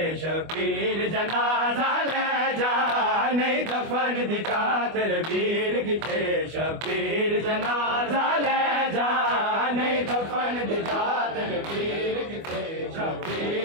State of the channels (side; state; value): left; late; 25 ms